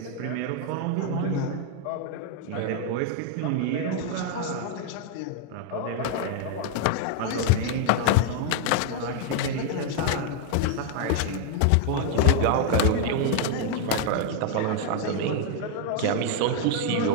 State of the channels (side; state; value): both; different; correlation 0.00